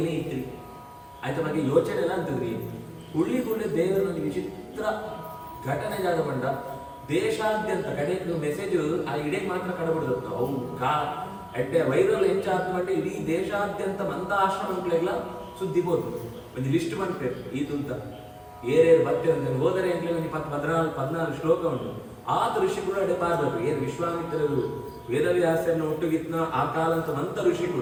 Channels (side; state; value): both; identical; correlation 1.00